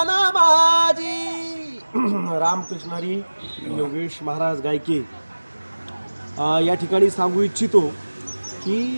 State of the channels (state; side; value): inverted; both; correlation -1.00